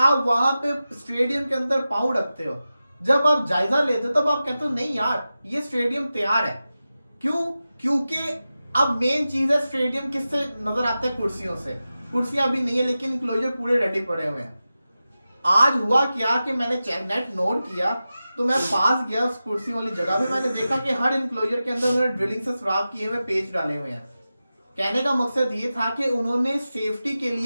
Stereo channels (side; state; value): both; inverted; correlation -0.94